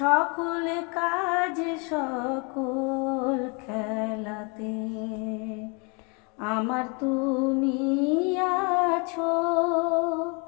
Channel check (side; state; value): right; quieter; 33.2 dB